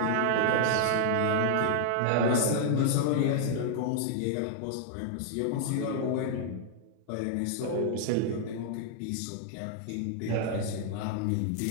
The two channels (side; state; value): both; different; correlation -0.01